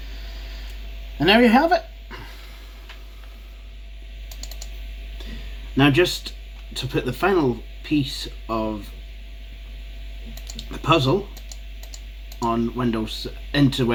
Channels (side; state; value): both; identical; correlation 1.00